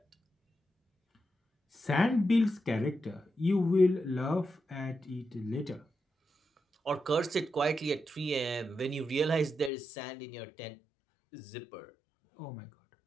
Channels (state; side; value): drops out; right; at 9.7 s